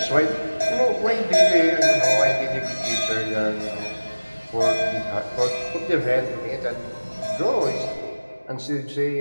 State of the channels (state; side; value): inverted; both; correlation -1.00